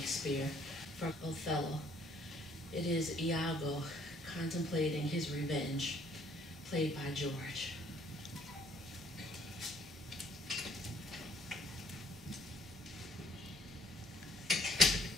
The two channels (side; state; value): both; normal; correlation 0.61